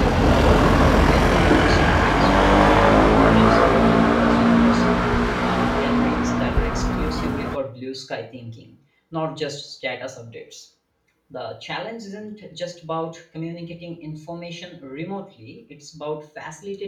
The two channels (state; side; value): identical; both; correlation 1.00